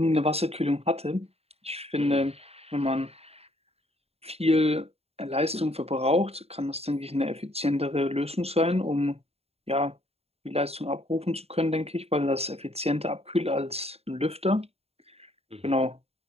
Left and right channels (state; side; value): late; left; 0.29 ms